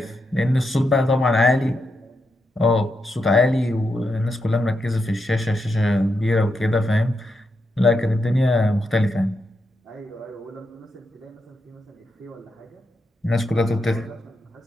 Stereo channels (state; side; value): normal; both; correlation 0.84